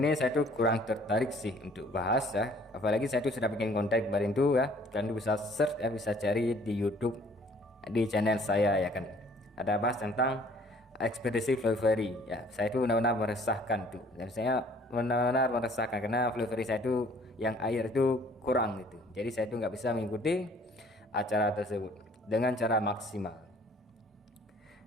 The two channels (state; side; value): normal; both; correlation 0.57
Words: saya tuh kurang tertarik sih untuk bahas ya, apalagi saya tuh sudah bikin konten kemarin tuh ya, kalian bisa search ya, bisa cari di YouTube di channel saya ya kan, ada bahas tentang ekspedisi Flurry ya. Saya itu benar-benar meresahkan tuh, dan saya benar-benar meresahkan karena Flurry saya itu yang air itu kurang gitu, jadi saya itu nggak bisa mengikuti acara tersebut dengan cara maksimal.